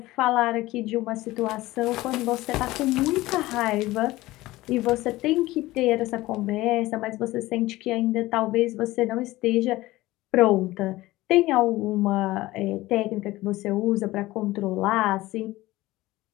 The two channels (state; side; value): quieter; right; 18.1 dB